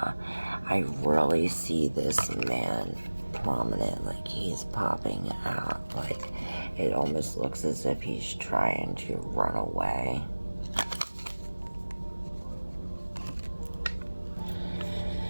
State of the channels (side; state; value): both; inverted; correlation -1.00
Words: really see this man prominent, like he's popping out, like it almost looks as if he's trying to run away.